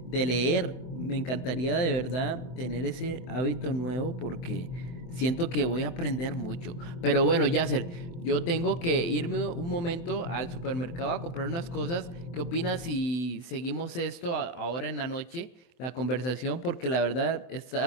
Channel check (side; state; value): right; late; 24 ms